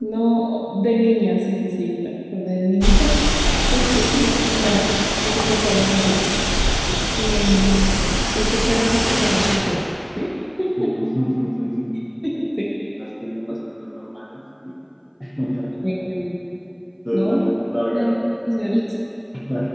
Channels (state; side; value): identical; both; correlation 1.00